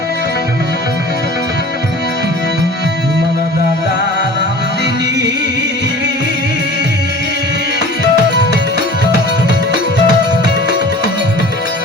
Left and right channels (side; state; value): both; normal; correlation 0.42